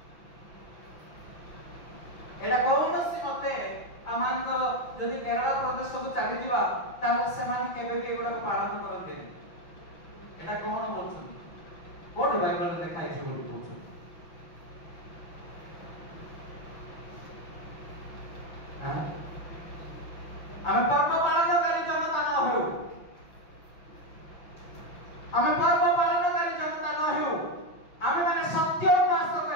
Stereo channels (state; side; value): late; right; 6.0 ms